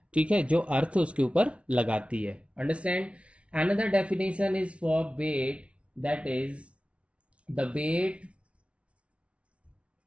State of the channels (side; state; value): left; late; 0.061 ms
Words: ठीक है, जो अर्थ उसके ऊपर लगाती है। Understand? Another definition is for weight, that is the weight,